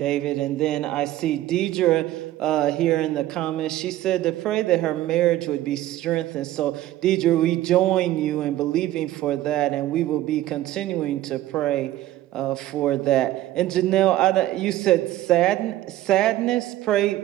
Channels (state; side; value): quieter; left; 14.6 dB